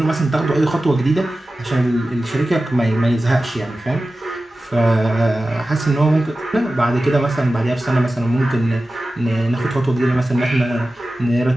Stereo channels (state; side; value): normal; both; correlation 0.95